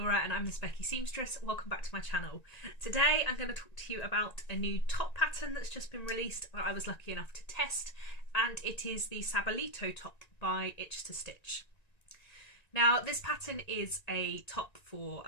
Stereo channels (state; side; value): late; right; 1.9 ms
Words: and I'm the Specky Seamstress. Welcome back to my channel. Today I'm going to talk to you about a new top pattern that's just been released that I was lucky enough to test, and it is the Sabalito top by Itch to Stitch. Now this pattern is a top for